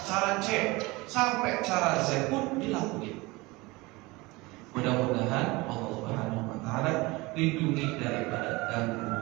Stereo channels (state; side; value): quieter; left; 23.0 dB